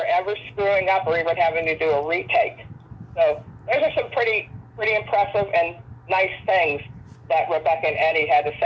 ever screwing up or even having to do a retake. So those are some pretty impressive and nice things that Rebecca and Eddie had to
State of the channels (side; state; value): both; identical; correlation 1.00